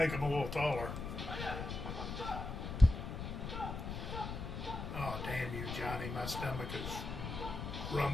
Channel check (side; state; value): left; noise; rumble, 6 dB below the sound